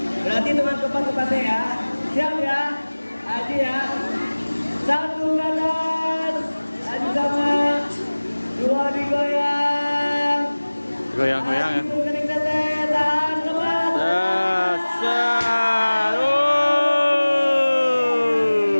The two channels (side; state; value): both; inverted; correlation -1.00